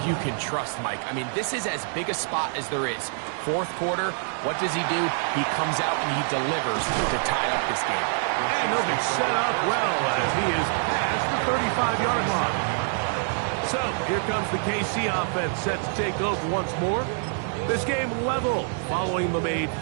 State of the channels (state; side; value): silent; left; 61 dB below the other